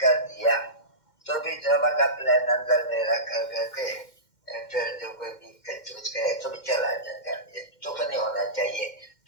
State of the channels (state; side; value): late; right; 2.1 ms